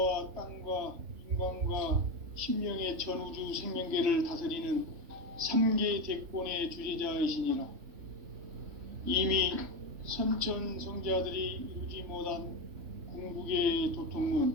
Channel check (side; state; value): left; late; 3.4 ms